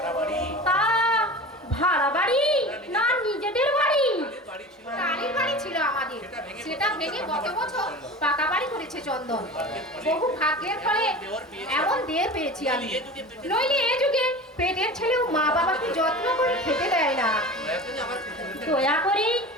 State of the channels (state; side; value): normal; both; correlation 0.34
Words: বাড়ি, তা ভাড়া বাড়ি না নিজেদের বাড়ি? বাড়ি ছিল। টালির বাড়ি ছিল আমাদের, সেটা ভেঙে গত বছর পাকা বাড়ি করেছে চন্দন। বহু ভাগ্যের ফলে এমন দেড় পেয়েছি আমি। নইলে এ যুগে পেটের ছেলেও মা বাবাকে যত্ন করে খেতে দেয় না। এখন আমার পুতুলকে দয়া করে